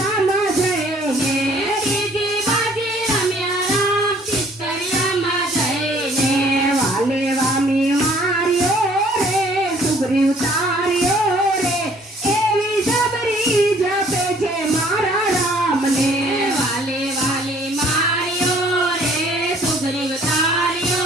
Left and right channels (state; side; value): normal; both; correlation 0.58